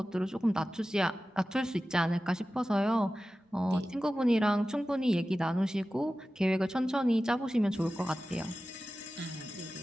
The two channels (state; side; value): normal; both; correlation 0.95